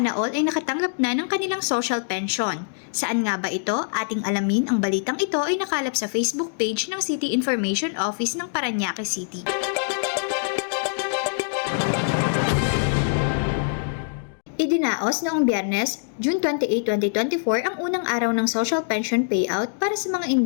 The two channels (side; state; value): right; silent; digital silence